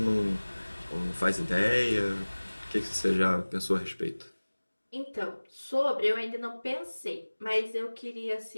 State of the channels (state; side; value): inverted; both; correlation -1.00